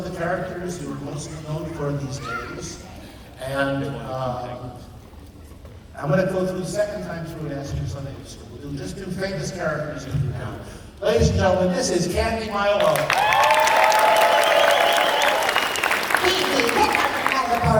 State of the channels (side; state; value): both; identical; correlation 1.00